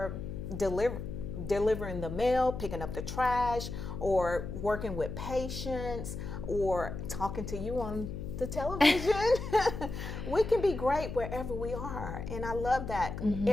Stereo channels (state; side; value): noise; left; hum, 7 dB below the sound